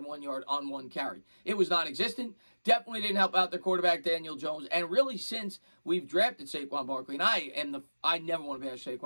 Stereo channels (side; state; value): both; inverted; correlation -1.00